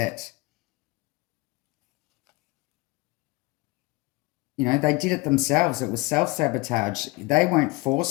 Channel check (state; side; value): quieter; right; 23.4 dB